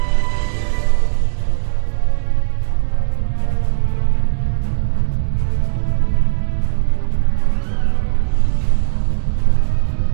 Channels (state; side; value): silent; left; digital silence